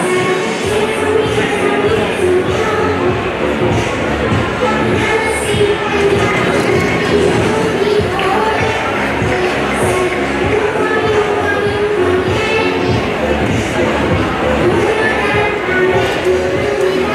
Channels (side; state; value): both; identical; correlation 1.00